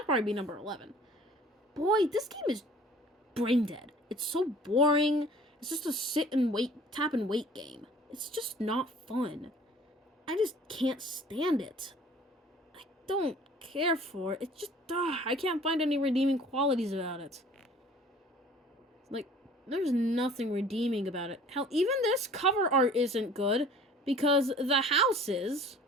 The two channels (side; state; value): both; normal; correlation 0.49